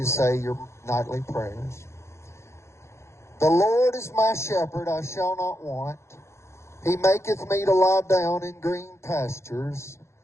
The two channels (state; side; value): late; right; 0.13 ms